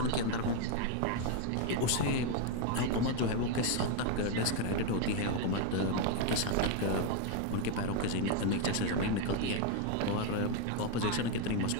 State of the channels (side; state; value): both; different; correlation 0.01